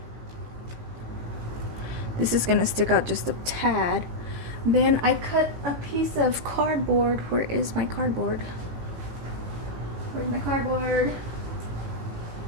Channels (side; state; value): left; late; 18 ms